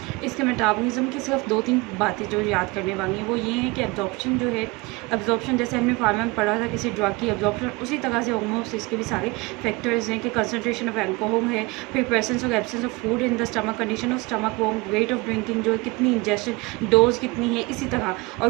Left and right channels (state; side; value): quieter; left; 24.6 dB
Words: इसके मेटाबॉलिज्म की सिर्फ 2-3 बातें जो याद करने वाली हैं वो ये है कि एब्जॉर्प्शन जो है, एब्जॉर्प्शन जैसे हमने फार्मा में पढ़ा था किसी ड्रग की एब्जॉर्प्शन, उसी तरह से ऑलमोस्ट इसके भी सारे फैक्टर्स हैं कि कंसनट्रेशन ऑफ अल्कोहल है, फिर प्रेजेंस और absence of food in the stomach, condition of stomach warm, weight of drinking जो है, कितनी इंजेस्टेड डोज कितनी है, इसी तरह और